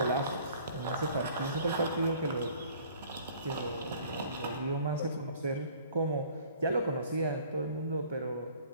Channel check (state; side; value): inverted; both; correlation -0.52